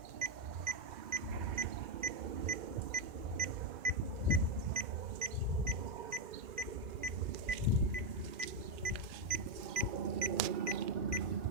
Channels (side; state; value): left; late; 2.4 ms